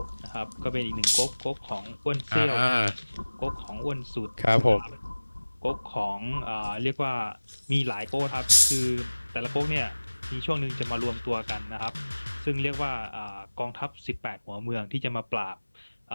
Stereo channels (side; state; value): both; inverted; correlation -1.00